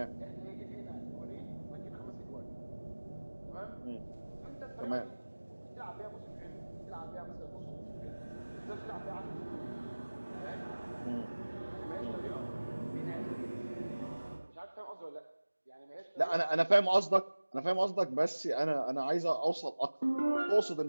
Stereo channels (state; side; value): inverted; both; correlation -1.00